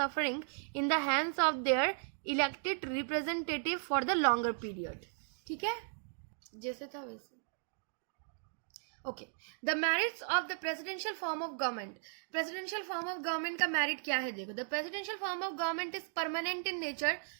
in the hands of their elected representative for the longer period. ठीक है, जैसे था वैसे. Okay, the merits of the presidential form of government. Presidential form of government का merit क्या है, देखो. The presidential form of government is permanent in nature.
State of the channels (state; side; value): silent; left; digital silence